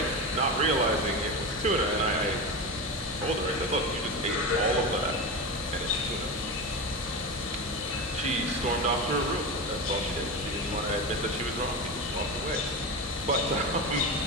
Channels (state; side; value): normal; both; correlation 0.21